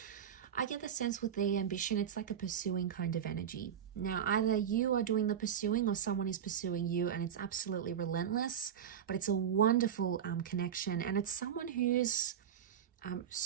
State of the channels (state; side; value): quieter; left; 8.9 dB